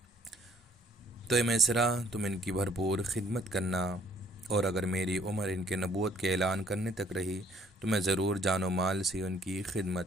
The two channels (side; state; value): both; normal; correlation 0.62